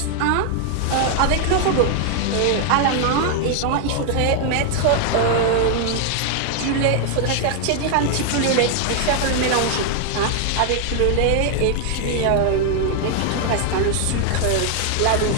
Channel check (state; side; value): different; both; correlation 0.00